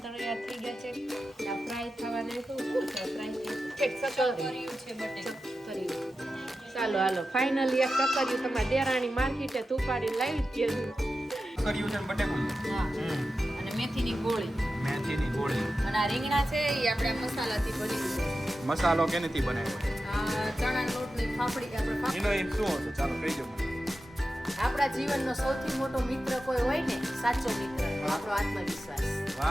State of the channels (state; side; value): normal; both; correlation 0.92